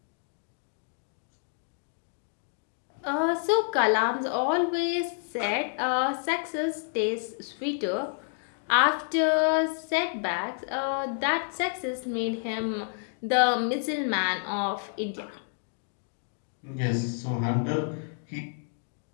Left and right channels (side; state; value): right; silent; 58 dB below the other